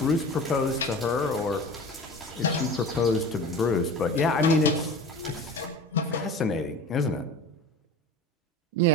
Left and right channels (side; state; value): both; normal; correlation 0.36